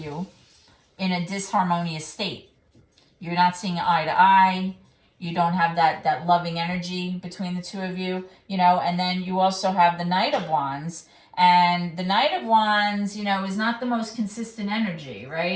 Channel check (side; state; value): both; identical; correlation 1.00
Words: in a disharmonious state. You're not seeing eye to eye. You don't have that loving energy between the two of you, and then you also have the Knight of Wands. And the Knight of Wands, is not the most consistent energy,